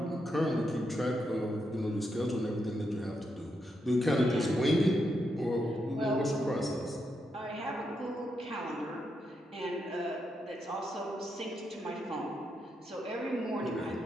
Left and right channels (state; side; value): normal; both; correlation 0.82